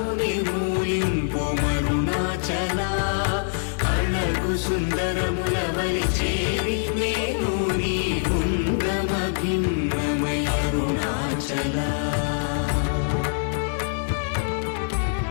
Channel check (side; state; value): right; silent; digital silence